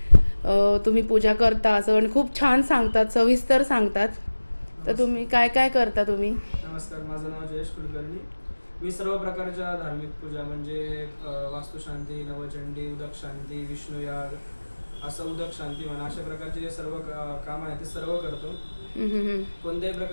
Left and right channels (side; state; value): both; inverted; correlation -1.00